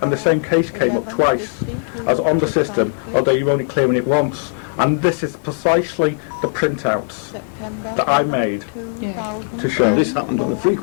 And the same case came up twice as on the system, although you're only clearing it once. And this is precisely the printouts that I made to show. This happened on a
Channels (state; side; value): silent; right; 67 dB below the other